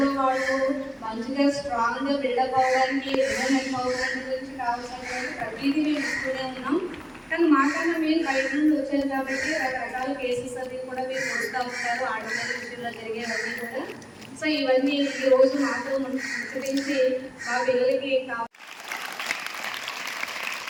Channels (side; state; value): both; identical; correlation 1.00